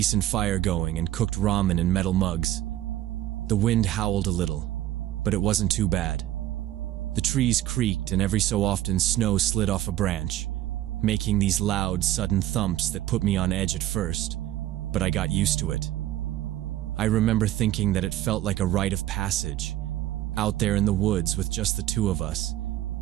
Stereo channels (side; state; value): left; quieter; 13.7 dB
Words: fire going and cooked ramen in metal mugs. The wind howled a little, but it wasn't too bad. The trees creaked and every so often snow slid off a branch, making these loud, sudden thumps that put me on edge at first, but I got used to it. I remember thinking that it felt like a rite of passage, out there in the woods with just the 2 of us,